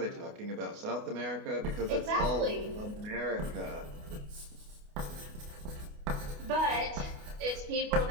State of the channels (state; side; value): late; left; 28 ms